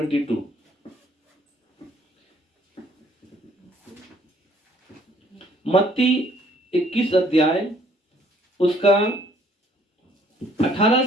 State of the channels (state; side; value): normal; both; correlation 0.62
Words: मत्ती 21 अध्याय उसका 18